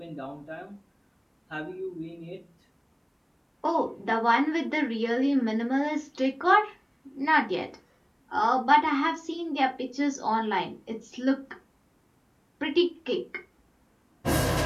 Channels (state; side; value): identical; both; correlation 1.00